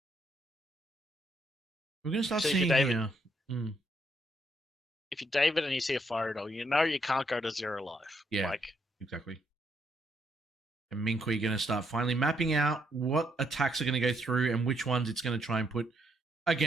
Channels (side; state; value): both; normal; correlation 0.74